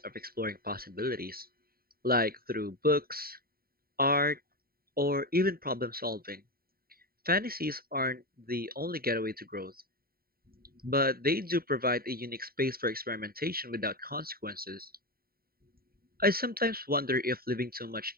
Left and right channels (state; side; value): late; left; 0.43 ms